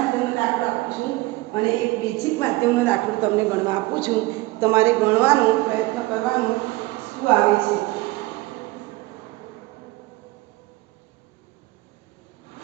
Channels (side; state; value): left; quieter; 20.5 dB